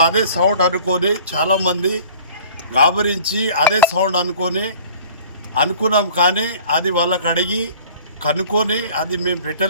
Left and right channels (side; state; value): both; inverted; correlation -0.48